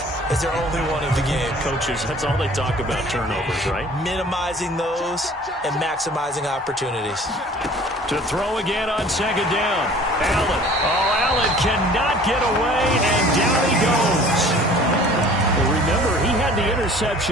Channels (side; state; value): both; normal; correlation 0.49